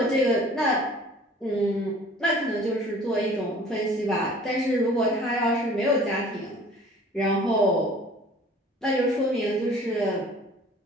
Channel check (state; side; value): normal; both; correlation 0.49